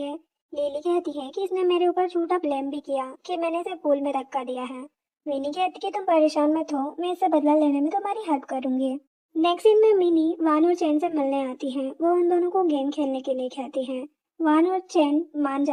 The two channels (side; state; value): both; identical; correlation 1.00